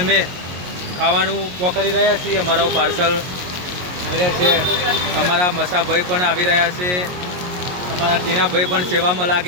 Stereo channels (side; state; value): left; late; 22 ms